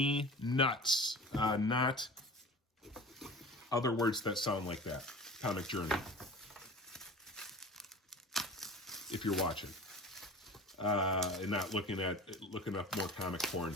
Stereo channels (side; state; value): both; normal; correlation 0.38